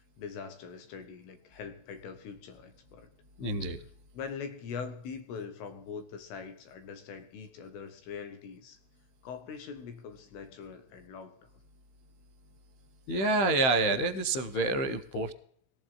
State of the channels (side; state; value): right; late; 15 ms